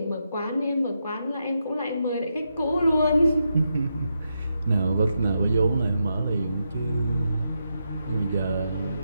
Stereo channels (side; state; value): both; inverted; correlation -0.84